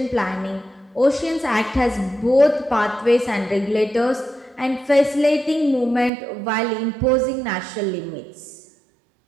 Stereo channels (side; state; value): left; drops out; at 6.1 s